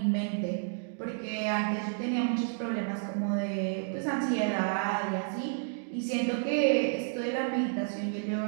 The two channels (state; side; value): silent; left; digital silence